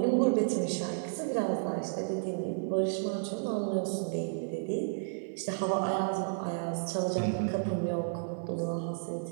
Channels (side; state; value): left; silent; 56 dB below the other